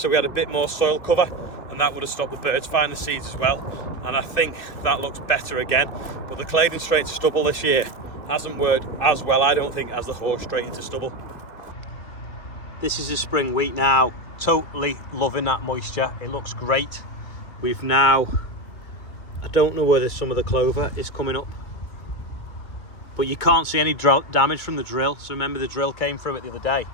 we had a bit more soil cover, and that would have stopped the birds finding the seeds as well. And I think that looks better again. But the Claydon straight to stubble this year hasn't worked as well, I don't think, as the horse straight into stubble. This is the spring wheat now. Totally loving that moisture. It looks great. We've now, I don't know whether some of the clover is coming up, but you can't see any damage from the drill. So remember, the drill came through it the other day.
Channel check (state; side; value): late; right; 2.4 ms